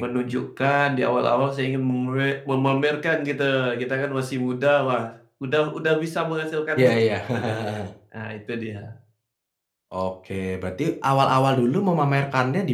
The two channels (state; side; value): identical; both; correlation 1.00